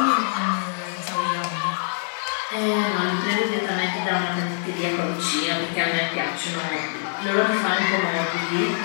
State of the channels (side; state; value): right; silent; digital silence